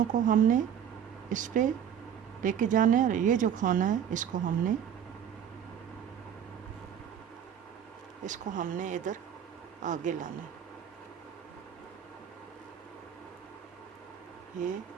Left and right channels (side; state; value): left; quieter; 8.8 dB